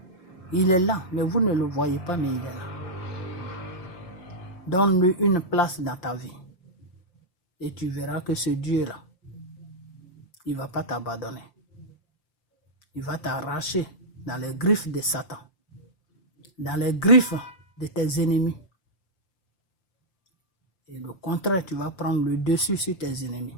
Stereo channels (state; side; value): late; right; 5.8 ms